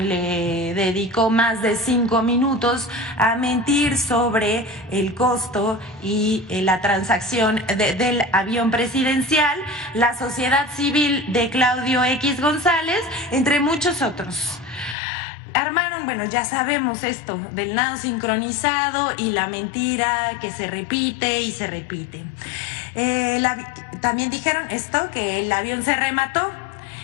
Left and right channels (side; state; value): right; drops out; at 15.0 s